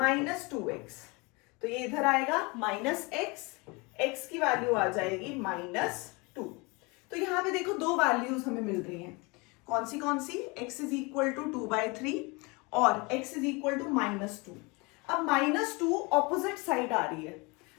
तो ये इधर आएगा -x, x की वैल्यू आ जाएगी -2। तो यहाँ पे देखो दो वैल्यूज हमें मिल रही हैं, कौन सी x इज इक्वल टू 2/3 और x इज इक्वल टू -2। अब -2 ऑपोजिट साइड आ रही है,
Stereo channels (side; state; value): right; quieter; 27.4 dB